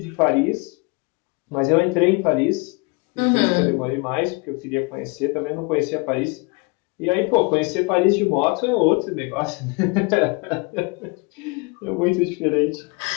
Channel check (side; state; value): right; quieter; 29.0 dB